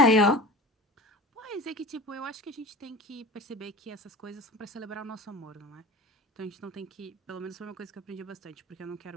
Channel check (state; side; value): normal; both; correlation 0.35